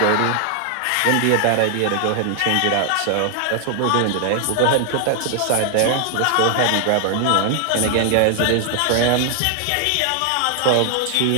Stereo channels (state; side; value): different; both; correlation 0.00